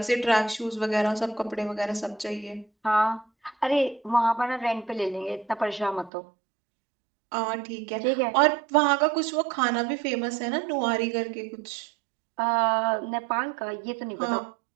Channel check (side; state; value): left; drops out; at 6.1 s